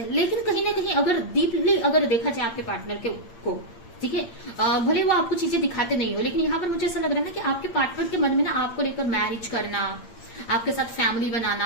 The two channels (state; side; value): late; right; 8.7 ms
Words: लेकिन कहीं ना कहीं अगर डीपली अगर देखा जाए आपके पार्टनर को, ठीक है, भले वो आपको चीजें दिखाते नहीं हो, लेकिन यहाँ पर मुझे ऐसा लग रहा है ना कि आपके पार्टनर के मन में ना आपको लेकर मैरिज करना, आपके साथ फैमिली